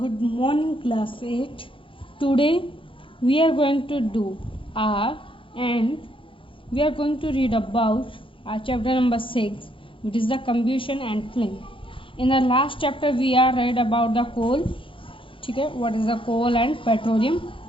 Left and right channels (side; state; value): right; late; 0.25 ms